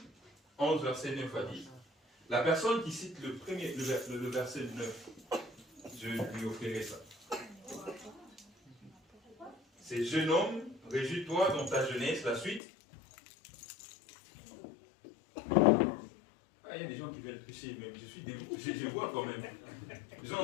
11, verset 9 à 10. La personne qui cite le verset 9, je lui offrirai ça. C'est jeune homme, réjouis-toi dans ta jeunesse, la suite. Ah, il y a des gens qui veulent tricher, même je suis dégoûté, je vois quand même. Les gens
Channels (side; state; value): right; drops out; at 12.6 s